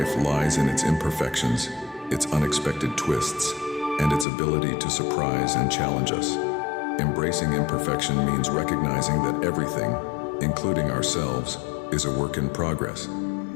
lies in its imperfections, its unexpected twists, and its ability to surprise and challenge us. Embracing imperfection means recognizing that everything, including ourselves, is a work in progress.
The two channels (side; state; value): right; drops out; at 4.2 s